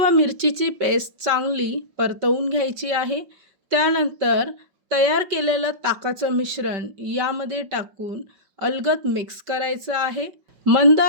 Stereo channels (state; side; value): late; left; 5.2 ms